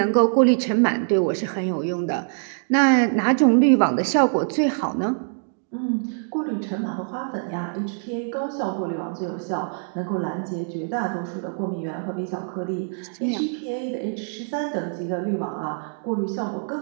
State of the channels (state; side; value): silent; left; digital silence